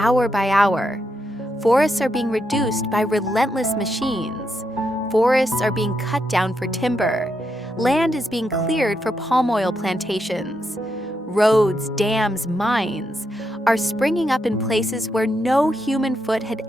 by hour, forests are being reduced by relentless machines. Forests are being cut down for timber. Land is being cleared for palm oil plantations. Roads, dams, mines are springing up in places where no human foot had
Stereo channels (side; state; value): both; normal; correlation 0.82